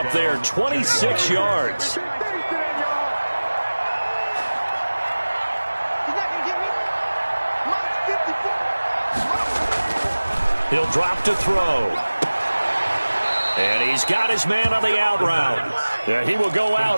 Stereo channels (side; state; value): both; inverted; correlation -1.00